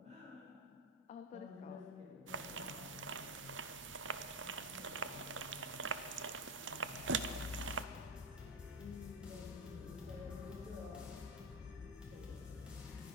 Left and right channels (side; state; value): both; normal; correlation 0.12